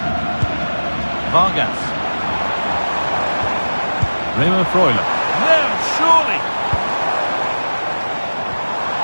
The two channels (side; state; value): both; inverted; correlation -1.00